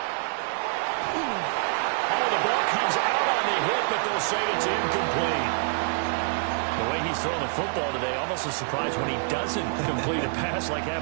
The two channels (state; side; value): silent; left; 61 dB below the other